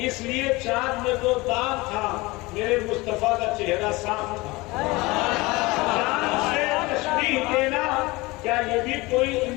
اس لیے چاند میں تو داغ تھا, میرے مصطفیٰ کا چہرہ صاف تھا. چاند سے تشبیہ دینا کیا یہ بھی کوئی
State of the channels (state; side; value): quieter; right; 22.6 dB